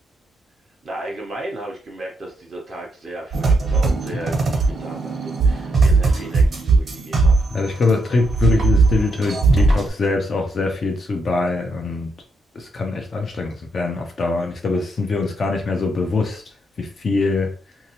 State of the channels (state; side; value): normal; both; correlation 0.78